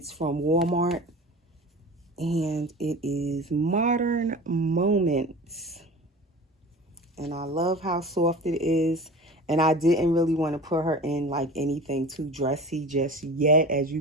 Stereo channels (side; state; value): both; normal; correlation 0.36